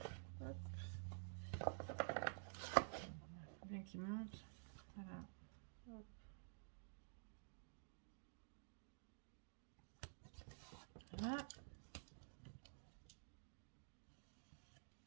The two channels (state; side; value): silent; left; digital silence